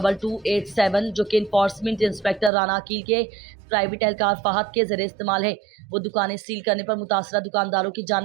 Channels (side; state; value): left; drops out; at 2.5 s